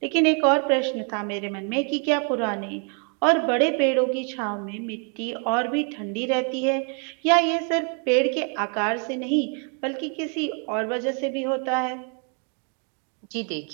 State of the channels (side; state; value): left; quieter; 39.7 dB